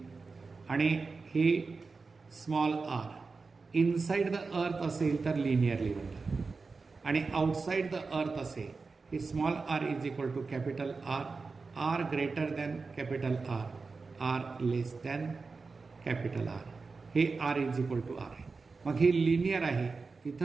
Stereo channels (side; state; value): left; quieter; 4.3 dB